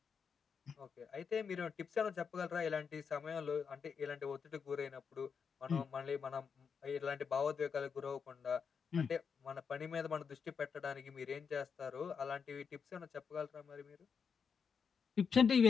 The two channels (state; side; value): quieter; right; 6.2 dB